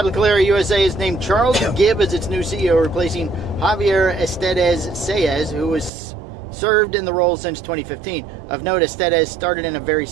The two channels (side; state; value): left; drops out; at 5.9 s